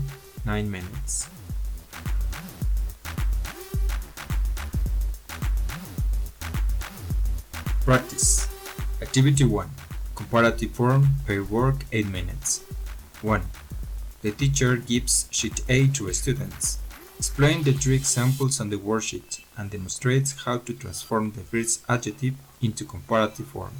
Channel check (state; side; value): identical; both; correlation 1.00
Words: 9 minutes. Practice. Activity 1. Comparative form, pair work 8 minutes. 1. The teacher gives sheet A to students. Explain the 3 examples on the worksheet and demonstrates how to transform the first adjective into comparative form.